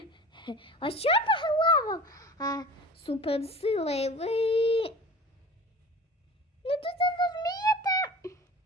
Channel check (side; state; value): both; normal; correlation 0.39